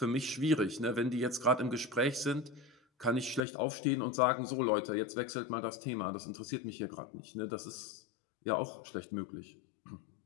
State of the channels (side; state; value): right; drops out; at 3.5 s